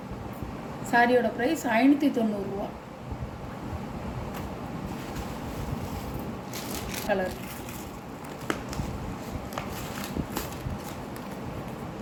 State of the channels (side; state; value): both; identical; correlation 1.00